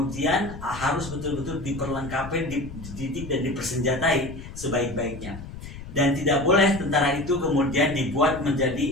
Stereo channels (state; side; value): noise; left; rumble, 12 dB below the sound